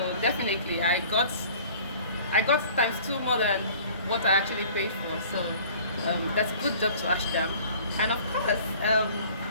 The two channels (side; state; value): both; inverted; correlation -0.48